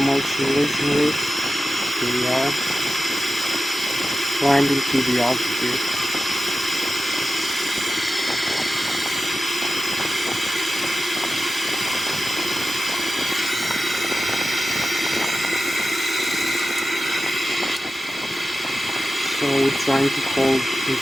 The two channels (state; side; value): normal; both; correlation 0.93